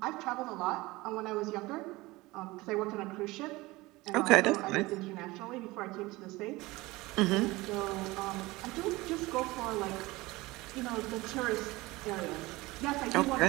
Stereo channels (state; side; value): quieter; left; 20.9 dB